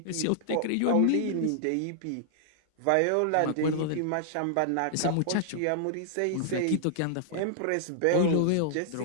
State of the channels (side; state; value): both; different; correlation -0.01